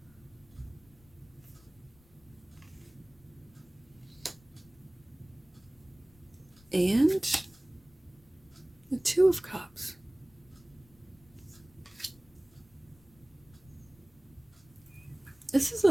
And the Two of Cups. This is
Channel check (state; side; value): noise; left; rumble, 27 dB below the sound